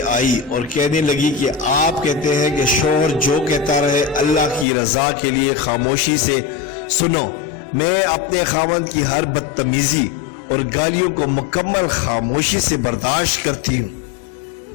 آئی اور کہنے لگی کہ آپ کہتے ہیں کہ شوہر جو کہتا رہے اللہ کی رضا کے لیے خاموشی سے سنو۔ میں اپنے خاوند کی ہر بدتمیزی اور گالیوں کو مکمل خاموشی سے برداشت کرتی ہوں،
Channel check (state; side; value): drops out; right; at 4.7 s